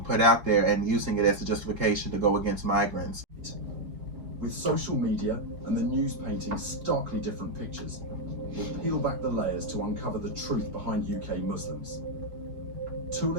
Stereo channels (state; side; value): late; left; 3.8 ms